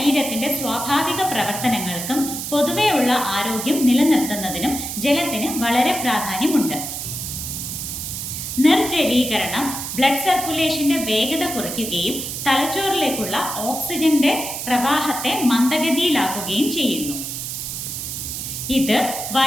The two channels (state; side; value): noise; right; hiss, 5 dB below the sound